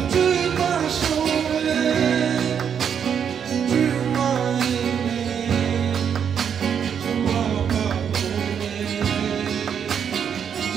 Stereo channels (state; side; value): quieter; left; 7.8 dB